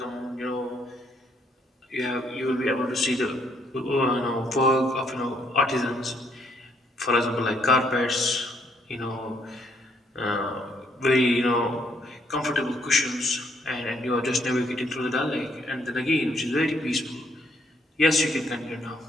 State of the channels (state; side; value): normal; both; correlation 0.70